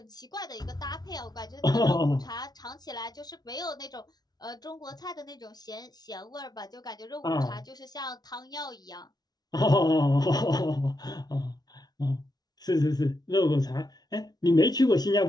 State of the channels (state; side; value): late; right; 0.19 ms